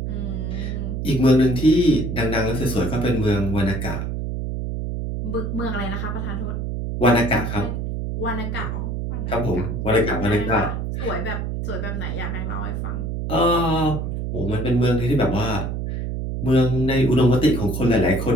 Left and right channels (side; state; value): right; noise; hum, 3 dB below the sound